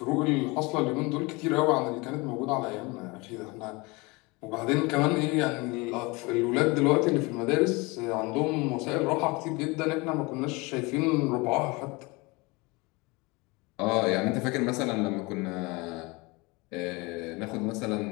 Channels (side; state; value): right; quieter; 25.5 dB